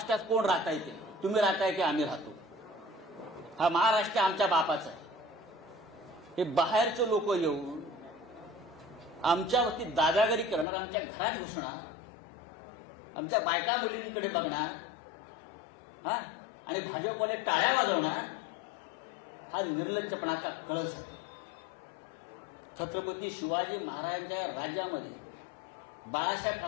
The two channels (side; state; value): right; drops out; at 10.7 s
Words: कोण राहता येते, तुम्ही राहताय की आम्ही राहतो. हा महाराष्ट्र आमच्या बापाचा आहे. हे बाहेरचे लोक येऊन आमच्यावरती दादागिरी करणार, आमच्या घरात घुसणार, आमच्या बायका मुलींकडे बघणार, हा, आणि भाजपवाले टाळ्या वाजवणार, हा निर्लज्जपणाचा कळस आहे. छत्रपती शिवाजी महाराजांच्या राज्यामध्ये, बाळासाहेब